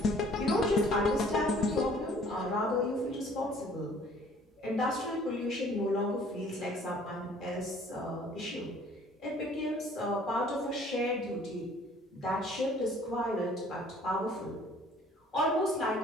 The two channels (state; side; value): normal; both; correlation 0.55